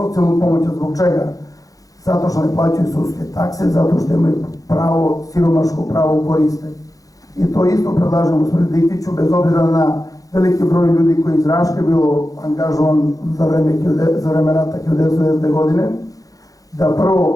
pomoć. Zbog čega? Zato što ne plaćaju sudske takse, zato što imaju pravo, siromaško pravo koriste. I to isto predlažem gospodinu Dikiću, bez obzira na veliki broj ljudi koji iz Raške bilo angažovan za vreme rata 1990. godine, da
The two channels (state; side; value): late; right; 0.17 ms